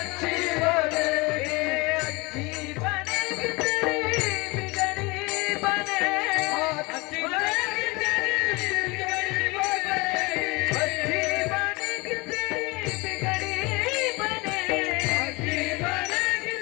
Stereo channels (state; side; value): quieter; right; 25.5 dB